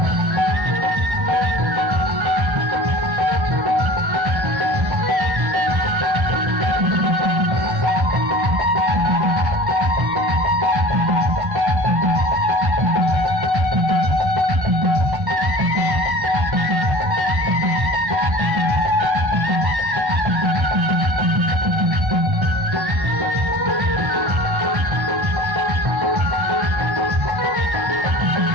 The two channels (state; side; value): late; left; 1.3 ms